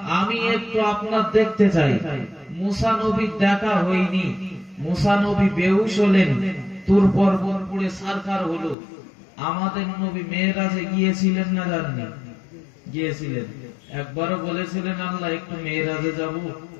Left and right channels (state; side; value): drops out; right; at 8.8 s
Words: আমি একটু আপনার দেখতে চাই। মুসা নবীর দেখা হয়নি। মুসা নবী বেহুশ হলেন, তুর পর্বত পুড়ে ছারখার হলো। আমাদের নবী মেরাজে গিয়েছিলেন না জানেন? গিয়েছিলেন। একবারও বলেছিলেন আল্লাহ একটু মেরাজে যাব,